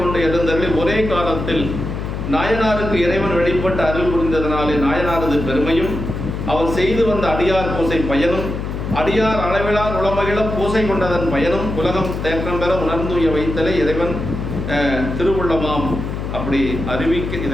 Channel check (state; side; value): noise; left; hum, 5 dB below the sound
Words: எழுந்தருளி ஒரே காலத்தில் நாயனாருக்கு இறைவன் வெளிப்பட்டு அருள் புரிந்ததனாலே நாயனாரது பெருமையும், அவர் செய்து வந்த அடியார் பூசை பயனும், அடியார் அளவிலார் உளமகிழ பூசை கொண்டதன் பயனும் உலகம் தேற்றம் பெற உணர்ந்துய வைத்தலே இறைவன் திருவுள்ளமாம். அப்படி